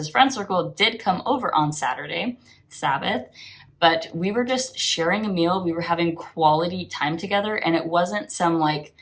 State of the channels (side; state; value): both; identical; correlation 1.00